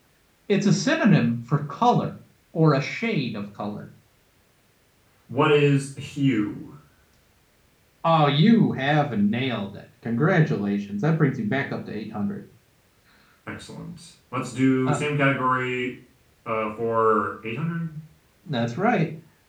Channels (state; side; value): identical; both; correlation 1.00